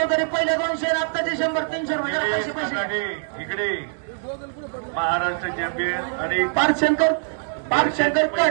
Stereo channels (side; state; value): left; silent; 63 dB below the other